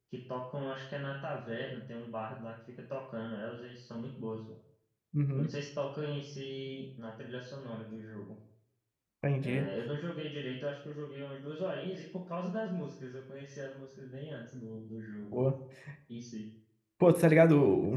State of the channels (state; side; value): identical; both; correlation 1.00